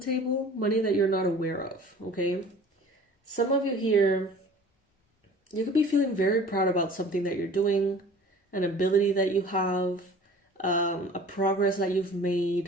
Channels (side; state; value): both; normal; correlation 0.45